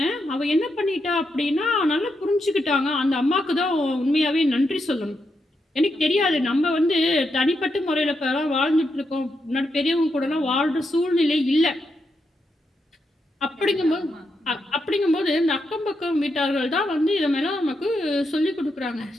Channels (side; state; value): both; normal; correlation 0.83